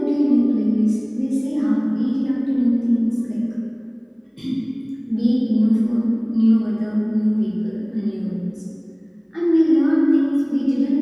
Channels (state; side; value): identical; both; correlation 1.00